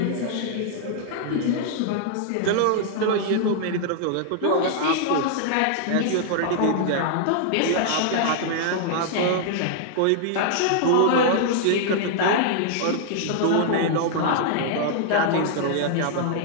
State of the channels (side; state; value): both; different; correlation -0.01